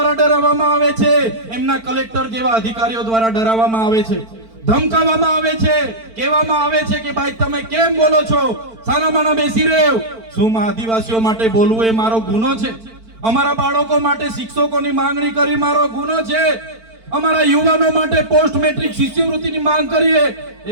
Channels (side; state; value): left; late; 4.5 ms